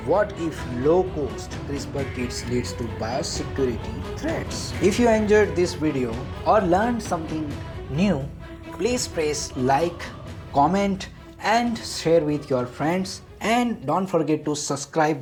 what if low-cost CRISPR kits leads to biosecurity threats? If you enjoyed this video or learned something new, please press like, comment, and share with your friends, and don't forget to subscribe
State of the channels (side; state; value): both; identical; correlation 1.00